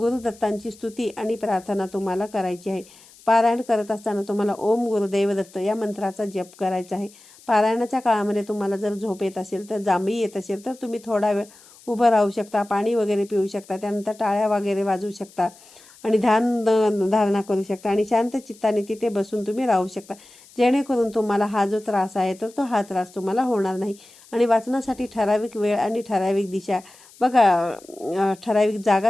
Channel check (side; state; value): left; noise; hiss, 24 dB below the sound